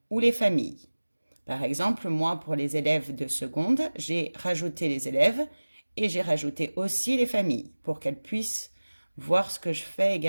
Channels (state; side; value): inverted; both; correlation -1.00